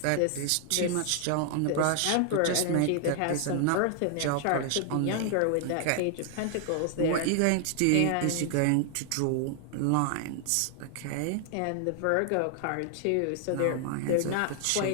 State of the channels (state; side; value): different; both; correlation 0.00